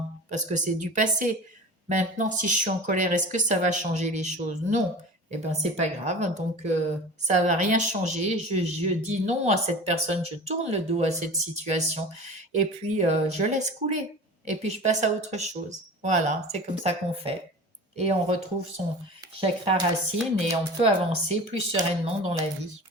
Parce que c'est du passé. Maintenant, si je suis en colère, est-ce que ça va changer les choses? Non. Eh ben, c'est pas grave. Donc, ça va rien changer. Je dis non à cette personne. Je tourne le dos à cette situation. Et puis, je laisse couler. Et puis, je passe à autre chose. Voilà, c'est comme ça qu'on fait. Et on retrouve son chakra racine et on peut avancer plus sereinement dans la vie.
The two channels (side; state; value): both; normal; correlation 0.36